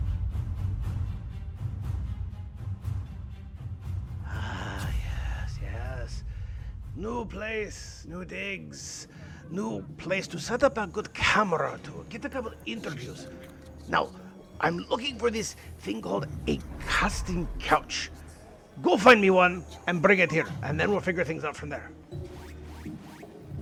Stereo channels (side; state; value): both; identical; correlation 1.00